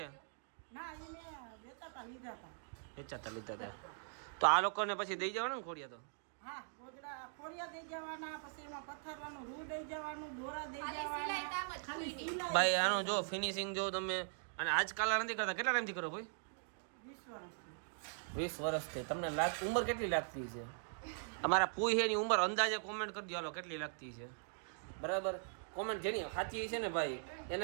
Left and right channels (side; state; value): left; silent; digital silence